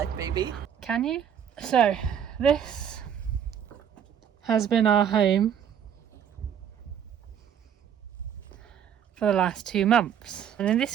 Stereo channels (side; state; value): left; quieter; 8.7 dB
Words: baby. Can you? So this has been our home for the last 2 months. And in